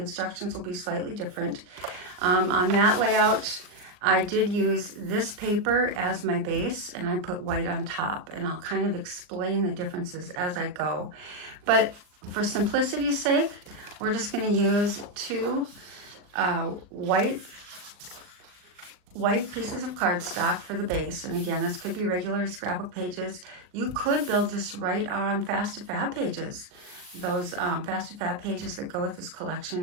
will be slightly different. On that layout, I did use this paper as my base, and I put white on top, and I'll kind of explain the differences as I go. But for simplicity's sake, we're just going to use 2 white pieces of cardstock for the base. And again, this could be regular scrapbook pages. You could build this right on Fast to Fab pages. Those Fast to Fab pages that go with this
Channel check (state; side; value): late; left; 39 ms